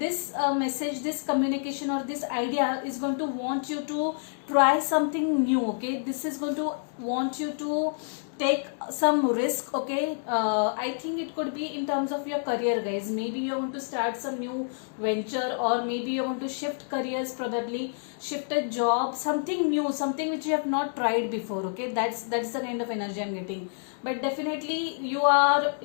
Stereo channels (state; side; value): silent; right; digital silence